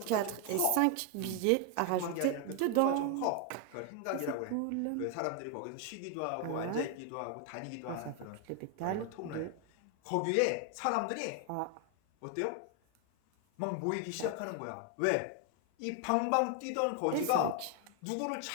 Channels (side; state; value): both; different; correlation 0.01